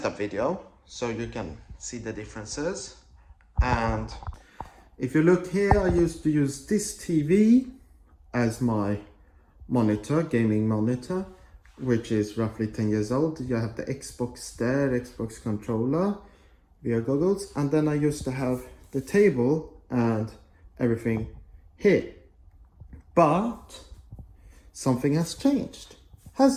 video, so you can see the differences. And if you look here, I used to use this TV as my monitor, gaming monitor, which is roughly 10 years old. You have the Xbox there, Xbox controller, VR goggles, and then I used to have the table and everything here. But something has changed,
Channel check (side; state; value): both; identical; correlation 1.00